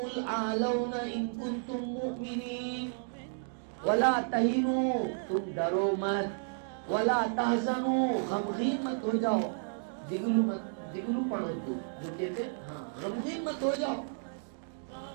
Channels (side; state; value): left; silent; digital silence